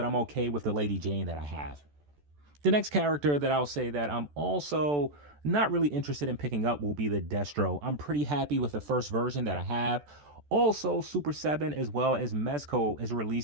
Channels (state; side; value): late; left; 14 ms